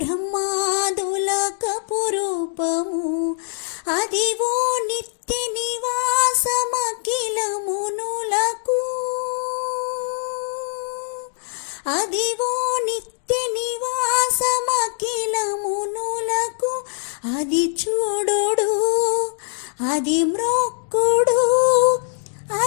కపురూపము అదివో నిత్య నివాసమఖిలమునులకు అదివో నిత్య నివాసమఖిలమునులకు అది చూడుడు అది మ్రొక్కుడు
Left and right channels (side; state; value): right; silent; 64 dB below the other